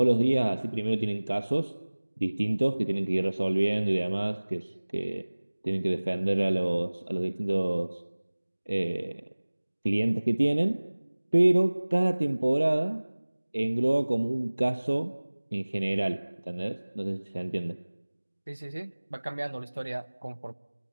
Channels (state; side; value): inverted; both; correlation -1.00